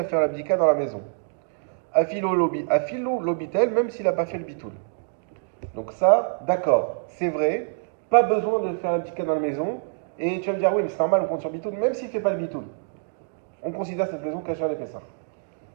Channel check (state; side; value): silent; left; digital silence